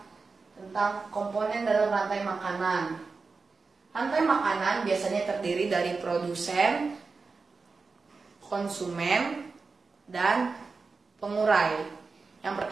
tentang komponen dalam rantai makanan. Rantai makanan biasanya terdiri dari produsen, konsumen, dan pengurai. Yang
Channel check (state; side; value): quieter; left; 4.4 dB